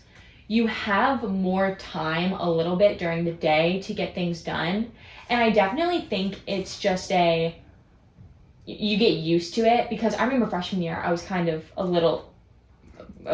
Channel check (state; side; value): identical; both; correlation 1.00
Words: You have more time a little bit during the day to get things done. And I definitely think it's just you get used to it because I remember freshman year, I was kind of a little